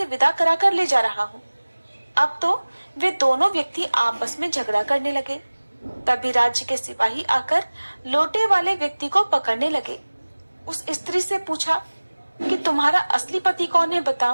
विदा करा कर ले जा रहा हूँ। अब तो वे दोनों व्यक्ति आपस में झगड़ा करने लगे। तभी राज्य के सिपाही आकर लोटे वाले व्यक्ति को पकड़ने लगे। उस स्त्री से पूछा कि तुम्हारा असली पति कौन है,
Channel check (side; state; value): both; inverted; correlation -1.00